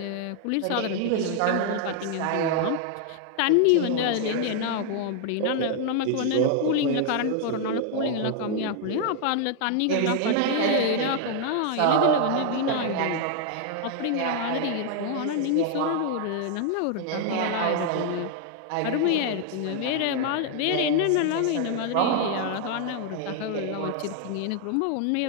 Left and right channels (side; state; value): both; different; correlation 0.00